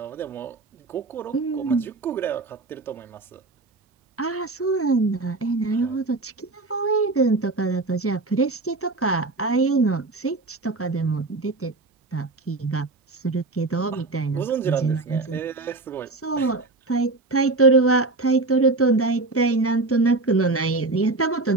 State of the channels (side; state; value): left; quieter; 3.4 dB